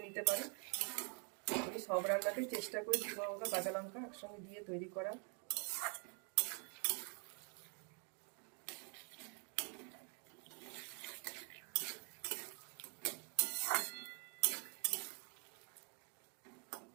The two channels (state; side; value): quieter; left; 38.7 dB